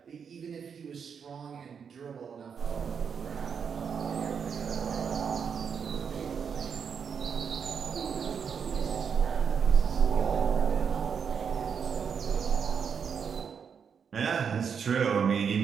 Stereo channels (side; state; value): left; quieter; 6.8 dB